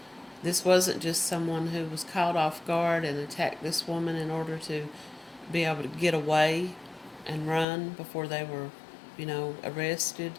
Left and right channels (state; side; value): drops out; right; at 7.7 s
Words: This wasn't just someone who was caught off guard and attacked this woman in order to be able to get away and run before they were, arrested.